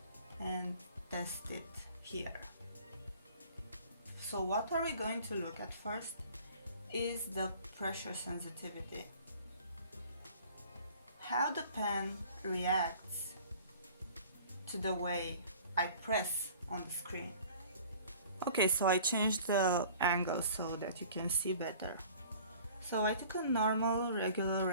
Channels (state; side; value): inverted; both; correlation -0.48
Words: and test it here. So what are we going to look at first is the pressure sensitivity. How the pen reacts to the way I press on the screen. Okay, so I changed the angle so that you can see better. So I took a normal, regular